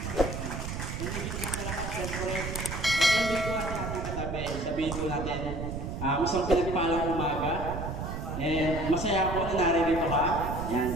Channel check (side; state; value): right; noise; rumble, 5 dB below the sound